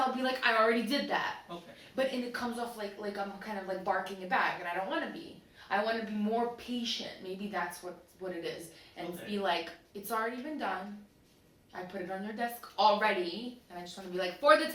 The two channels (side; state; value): both; identical; correlation 1.00